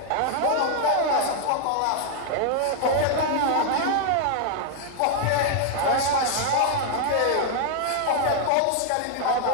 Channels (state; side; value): different; both; correlation 0.00